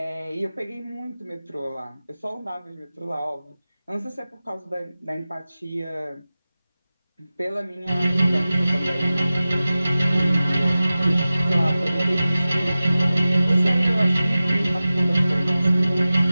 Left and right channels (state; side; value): inverted; both; correlation -0.96